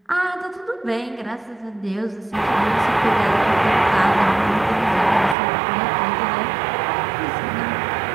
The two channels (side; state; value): left; drops out; at 5.4 s